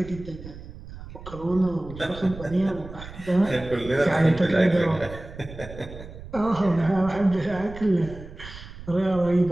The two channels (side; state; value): right; noise; rumble, 14 dB below the sound